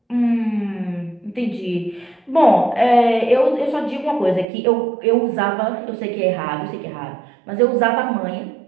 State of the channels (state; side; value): drops out; left; at 4.5 s